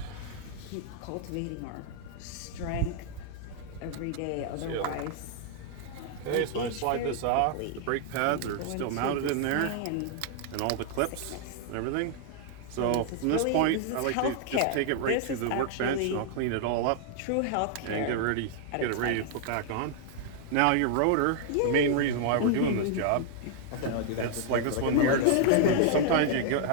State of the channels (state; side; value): different; both; correlation 0.00